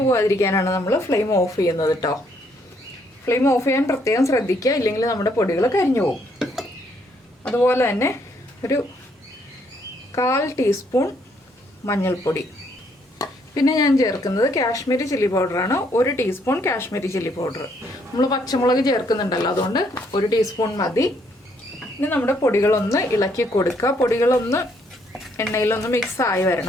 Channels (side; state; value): both; normal; correlation 0.70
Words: പോകാതിരിക്കാനാണ് നമ്മൾ ഫ്ലെയിം ഓഫ് ചെയ്യുന്നത് കേട്ടോ. ഫ്ലെയിം ഓഫ് ചെയ്യാൻ പ്രത്യേകം ശ്രദ്ധിക്കുക, ഇല്ലെങ്കിൽ നമ്മുടെ പൊടികൾ കരിഞ്ഞു പോകും. അതുപോലെ തന്നെ ഒരു 1/4 ടീസ്പൂൺ മഞ്ഞൾപ്പൊടി. പിന്നെ ഞാൻ ചേർക്കുന്നത് കാശ്മീരി ചില്ലി പൗഡറാണ്. 1 ടീസ്പൂൺ കാശ്മീരി ചില്ലി പൗഡർ. നമ്മൾ പച്ചമുളക് ചേർക്കുന്നുണ്ടല്ലോ, അതുകൊണ്ട് 1 ടീസ്പൂൺ മതി. ഇനി നമ്മുടെ പൊടികളൊന്ന് ഇളക്കി കൊടുക്കുക. പൊടികളൊന്ന് എണ്ണയിലൊന്ന് മിക്സ് ആയി